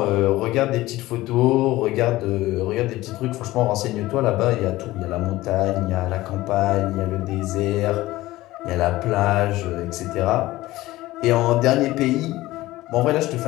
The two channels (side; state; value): right; quieter; 17.5 dB